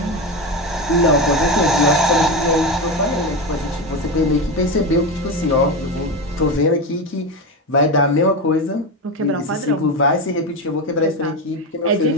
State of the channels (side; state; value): both; normal; correlation 0.17